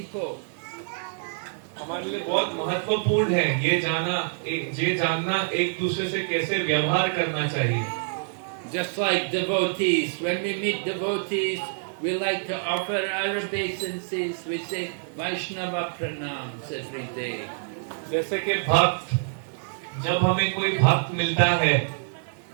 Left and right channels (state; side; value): silent; left; digital silence